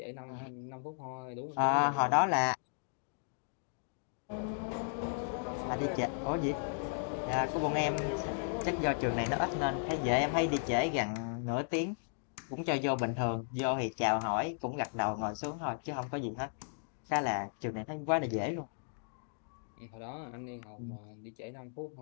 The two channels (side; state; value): right; silent; digital silence